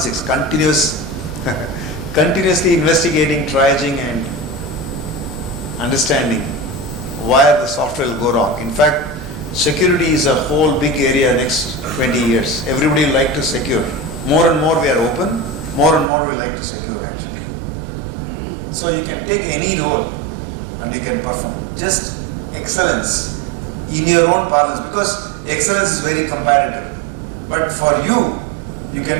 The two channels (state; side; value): drops out; left; at 16.1 s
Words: Continuously investigating, triaging and understanding where the software will go wrong. In fact, security is a whole big area next 20 years. Everybody will like to secure. More and more we are open, more and more we like to secure actually. So you can take any role and you can perform. Just excellence in your own parlance, because excellence is very comparative. But for you, you can